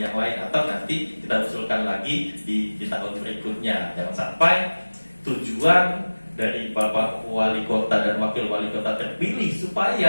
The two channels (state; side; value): inverted; both; correlation -1.00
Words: lain, atau nanti kita usulkan lagi di tahun berikutnya. Jangan sampai tujuan dari Bapak Wali Kota dan Wakil Wali Kota terpilih